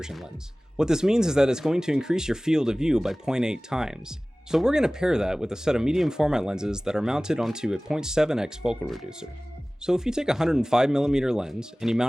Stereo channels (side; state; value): both; normal; correlation 0.98